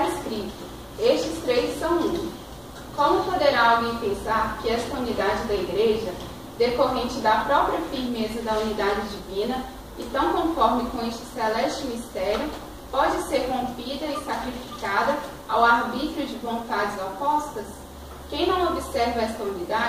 escrito: estes três são um. Como poderá alguém pensar que esta unidade da Igreja, decorrente da própria firmeza da unidade divina, e tão conforme com este celeste mistério, pode ser rompida e sacrificada ao arbítrio de vontades opostas? Quem não observa esta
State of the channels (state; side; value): identical; both; correlation 1.00